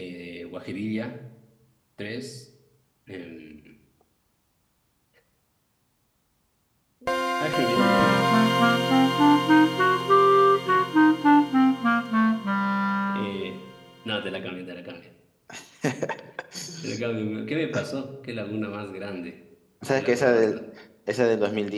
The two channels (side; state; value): both; identical; correlation 1.00